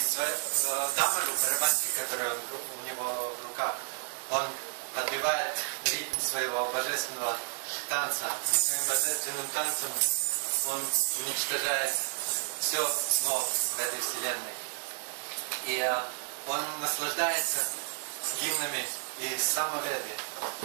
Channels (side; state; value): left; silent; 57 dB below the other